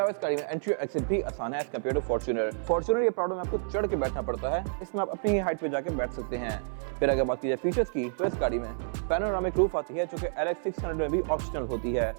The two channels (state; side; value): silent; left; 58 dB below the other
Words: इस गाड़ी में एंट्री और एक्सिट भी आसान है as compare to Fortuner. Fortuner ये प्राडो में आपको चढ़ के बैठना पड़ता है, इसमें आप अपनी हाइट पे जाके बैठ सकते हैं। फिर अगर बात की जाए फीचर्स की तो इस गाड़ी में पैनोरामिक रूफ आती है जो कि LX 600 में भी ऑप्शनल होती है